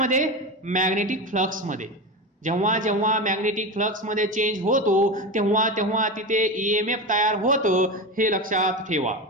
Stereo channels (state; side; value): normal; both; correlation 0.22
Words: मॅग्नेटिक फ्लक्स मध्ये. जेव्हा जेव्हा मॅग्नेटिक फ्लक्स मध्ये चेंज होतो तेव्हा तेव्हा तिथे ईएमएफ तयार होतं, हे लक्षात ठेवा.